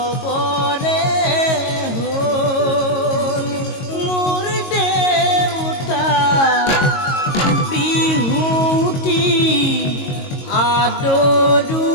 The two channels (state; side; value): late; right; 22 ms